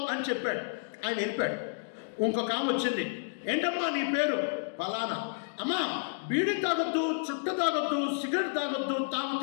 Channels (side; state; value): right; silent; digital silence